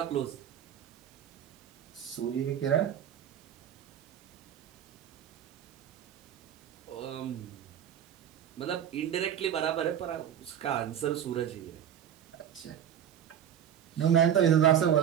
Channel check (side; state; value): left; quieter; 9.6 dB